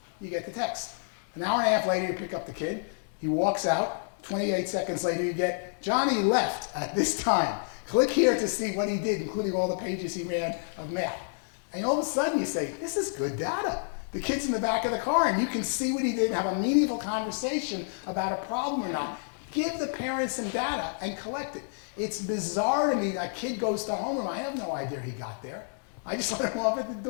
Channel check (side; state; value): right; silent; digital silence